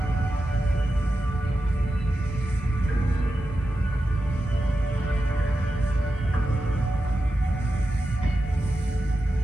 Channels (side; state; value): both; normal; correlation 0.91